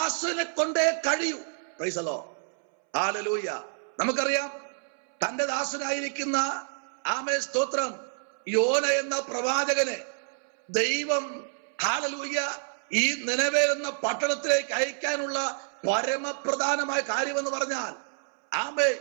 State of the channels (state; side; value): silent; left; 59 dB below the other